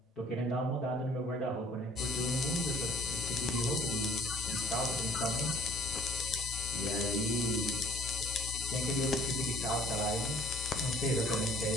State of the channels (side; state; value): both; normal; correlation 0.54